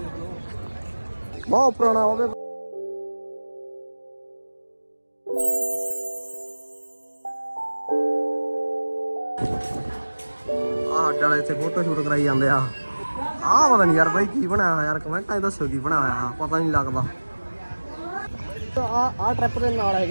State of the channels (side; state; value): both; inverted; correlation -1.00